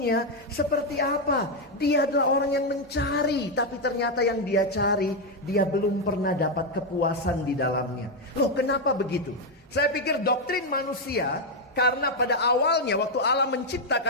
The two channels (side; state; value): both; normal; correlation 0.03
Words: seperti apa? Dia adalah orang yang mencari, tapi ternyata yang dia cari, dia belum pernah dapat kepuasan di dalamnya. Loh, kenapa begitu? Saya pikir doktrin manusia, karena pada awalnya waktu Allah